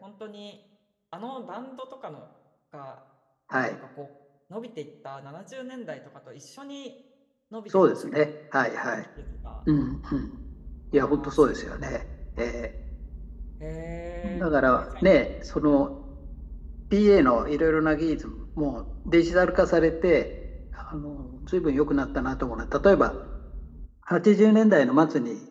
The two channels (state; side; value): identical; both; correlation 1.00